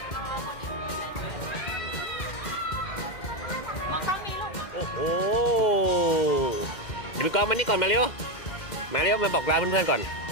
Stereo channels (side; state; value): right; late; 2.1 ms